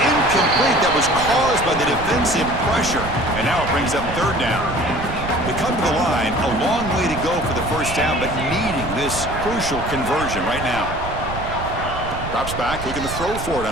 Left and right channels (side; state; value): right; noise; rumble, 9 dB below the sound